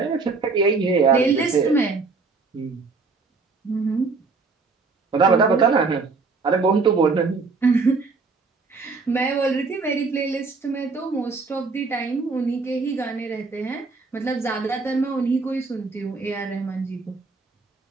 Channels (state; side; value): quieter; left; 4.3 dB